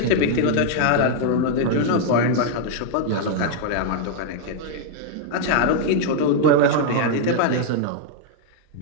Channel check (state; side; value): different; both; correlation -0.01